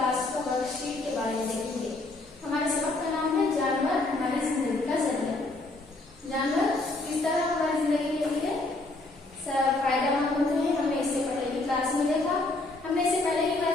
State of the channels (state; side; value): quieter; right; 3.0 dB